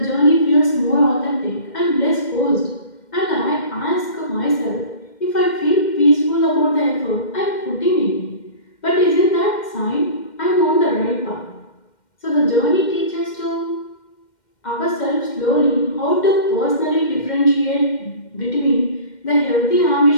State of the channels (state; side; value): late; right; 2.1 ms